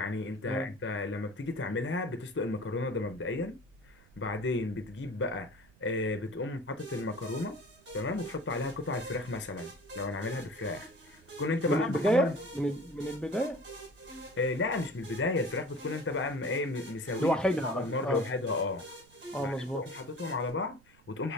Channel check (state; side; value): noise; right; rumble, 28 dB below the sound